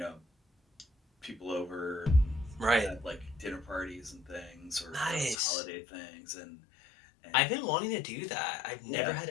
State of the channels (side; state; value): right; drops out; at 5.4 s